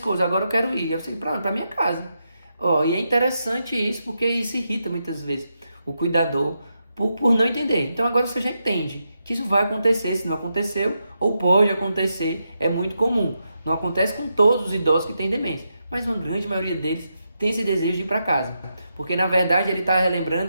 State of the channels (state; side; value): inverted; both; correlation -0.84